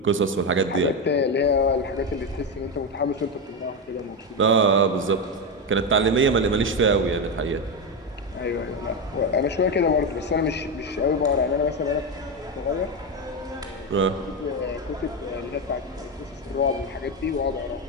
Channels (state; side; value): normal; both; correlation 0.12